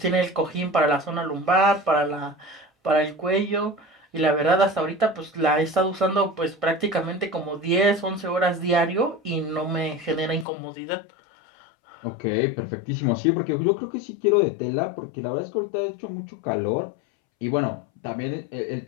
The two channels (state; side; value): drops out; right; at 10.5 s